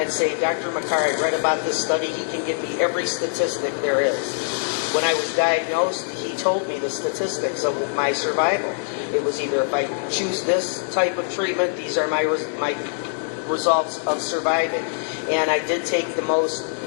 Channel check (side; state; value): right; silent; digital silence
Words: say, Dr. Makar, I read about this study. He can give me every statistic there is. When I was diagnosed, he told me the statistics of my survival. It was either if I choose this type of treatment, these are my results of surviving. And I did take the most